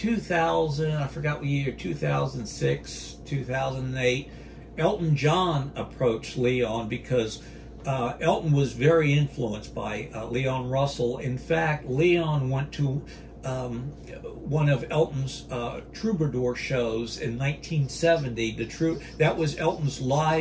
I forgot what year, 2006, 2008, Elton John approached Leon because Elton was very influenced by Leon Russell. In fact, Leon went to one of Elton's troubadour shows in 1970. That was Elton's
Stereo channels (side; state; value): both; identical; correlation 1.00